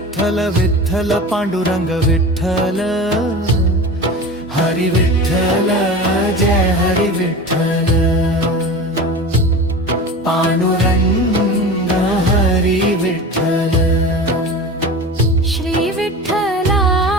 विठ्ठल पांडुरंग विठ्ठल। हरी विठ्ठल जय हरी विठ्ठल। पांडुरंग हरी विठ्ठल। श्री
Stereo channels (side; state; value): both; normal; correlation 0.32